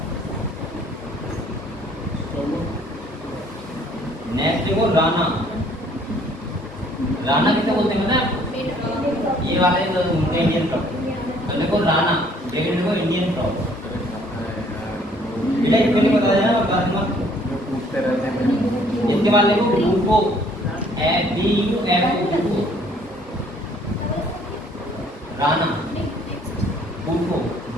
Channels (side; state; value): both; normal; correlation 0.60